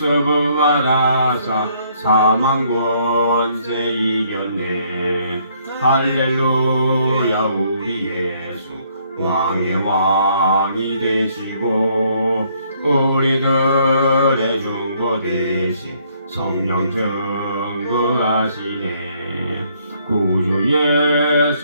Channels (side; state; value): both; inverted; correlation -0.67